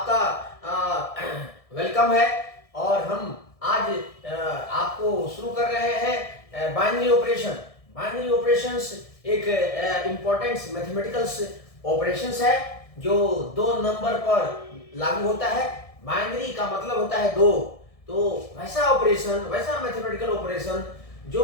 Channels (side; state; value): right; late; 1.6 ms